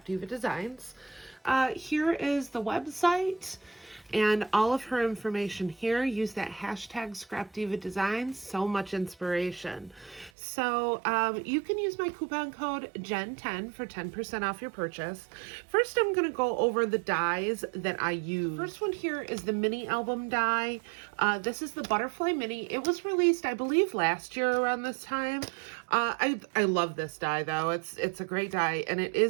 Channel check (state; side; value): drops out; left; at 10.3 s